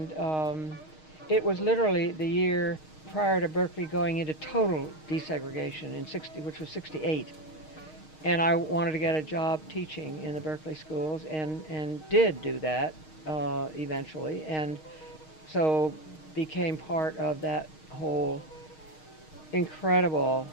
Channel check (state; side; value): late; right; 6.4 ms